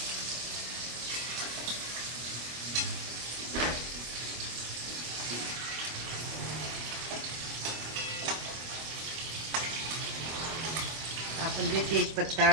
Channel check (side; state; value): left; late; 25 ms